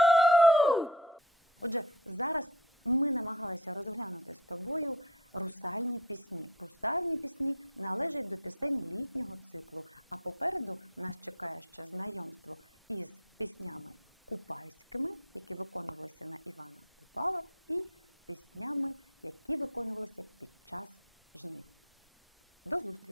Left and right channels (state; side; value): normal; both; correlation 0.27